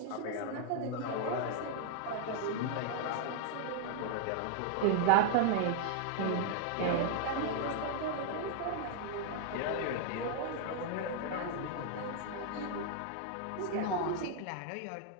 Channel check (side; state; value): both; different; correlation 0.00